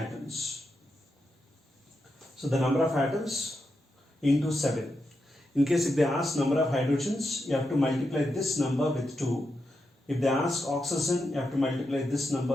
So the number of atoms into 7. In case if they ask number of hydrogens, you have to multiply this number with 2. If they ask oxygen, you have to multiply this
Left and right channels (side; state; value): both; normal; correlation 0.86